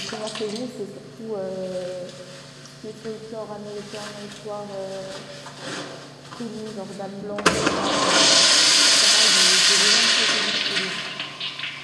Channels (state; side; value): identical; both; correlation 1.00